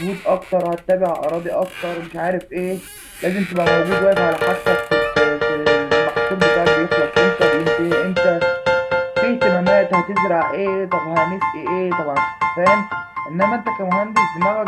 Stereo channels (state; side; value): identical; both; correlation 1.00